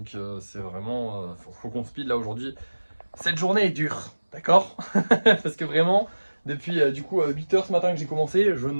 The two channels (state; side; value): inverted; both; correlation -1.00